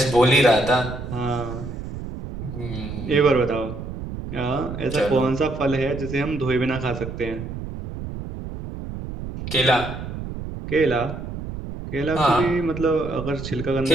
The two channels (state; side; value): noise; right; rumble, 8 dB below the sound